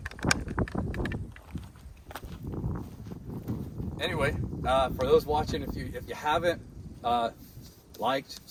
Anyway, for those watching, if you haven't liked,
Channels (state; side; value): identical; both; correlation 1.00